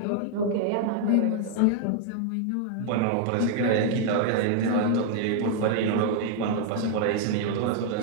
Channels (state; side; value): different; both; correlation 0.00